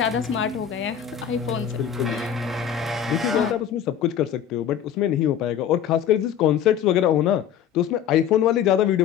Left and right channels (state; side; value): quieter; right; 9.3 dB